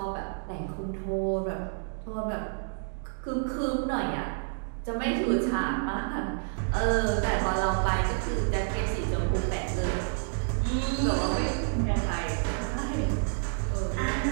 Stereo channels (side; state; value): left; silent; digital silence